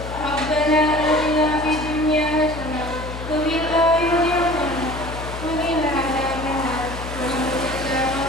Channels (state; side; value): noise; left; hum, 9 dB below the sound